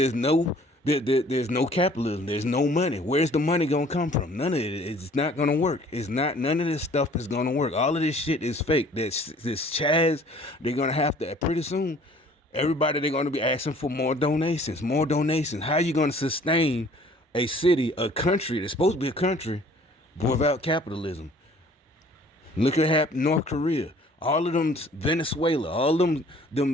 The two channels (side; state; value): both; normal; correlation 0.54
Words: no capitalism. There's no money. Where's the money gonna come from? None of it. It's not gonna work. It's not. None of this stuff is gonna work. All of this shit is fake. This Chaz. They're gonna have to pretty soon. Everybody, they're gonna be asking for more donations. More donations. How you gonna sustain a city, a country that's supposed to be a country, without capitalism? Look at North Korea. All of them, Venezuela, all them